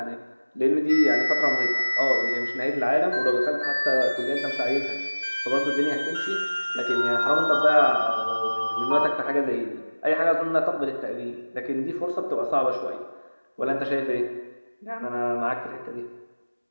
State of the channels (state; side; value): inverted; both; correlation -1.00